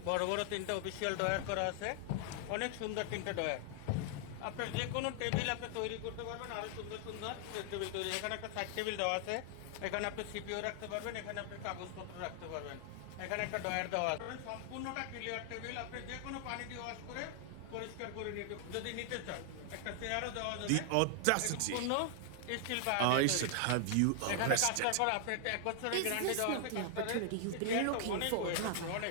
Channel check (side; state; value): both; different; correlation 0.00